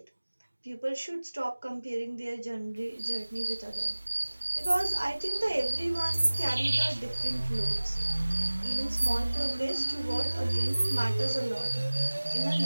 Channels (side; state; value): both; inverted; correlation -1.00